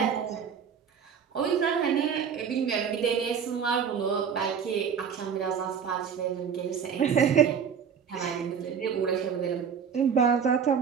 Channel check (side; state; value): left; quieter; 7.2 dB